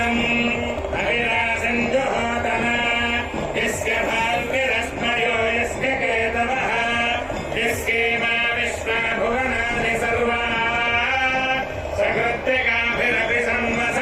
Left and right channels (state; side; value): identical; both; correlation 1.00